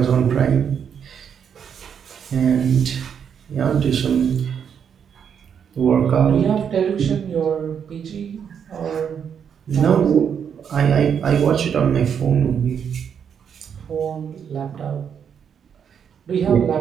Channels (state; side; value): quieter; left; 7.7 dB